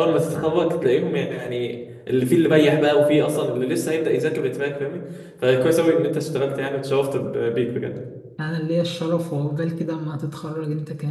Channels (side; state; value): both; identical; correlation 1.00